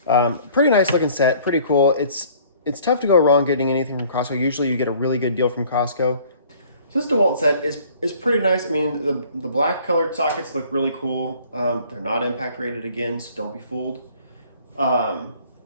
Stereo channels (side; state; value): both; inverted; correlation -0.54